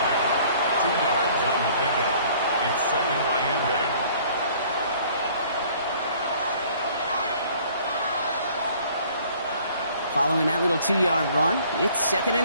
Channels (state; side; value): inverted; both; correlation -0.55